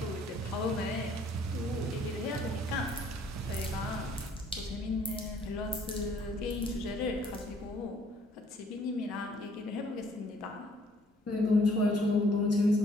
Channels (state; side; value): normal; both; correlation 0.61